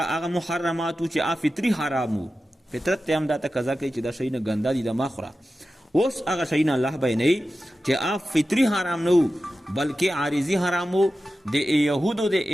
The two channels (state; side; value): normal; both; correlation 0.93